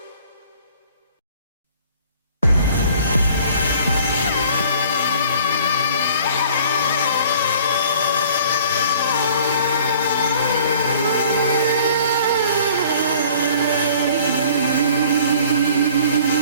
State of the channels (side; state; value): both; inverted; correlation -0.51